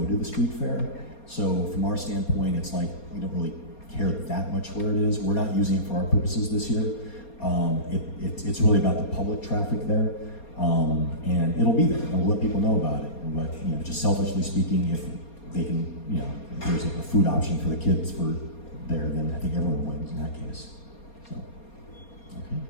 to the street fair. So from our standpoint, it's like, we don't really care that much where it is. We're not using it for our purposes this year. It's really about the public traffic there, and it'll be there, and we'll let people know about it. But, just selfishly speaking, if they can, if there's a food option for the kids for there, then I think everyone wins in that case. So, okay.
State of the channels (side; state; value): right; late; 4.3 ms